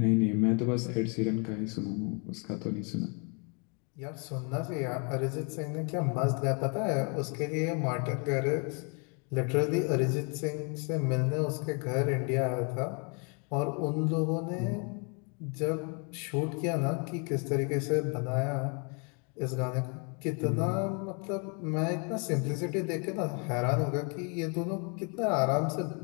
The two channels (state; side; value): quieter; right; 36.0 dB